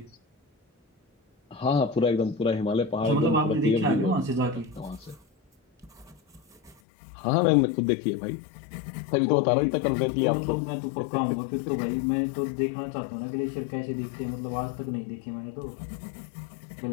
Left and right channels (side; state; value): right; drops out; at 6.8 s